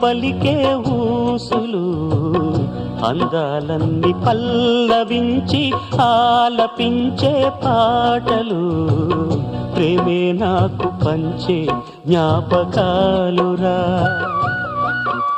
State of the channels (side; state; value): both; identical; correlation 1.00